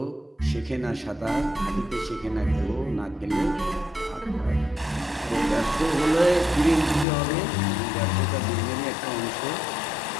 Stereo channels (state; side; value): drops out; right; at 7.1 s